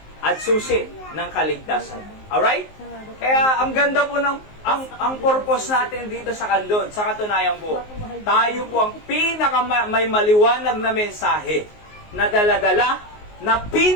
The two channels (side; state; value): right; late; 19 ms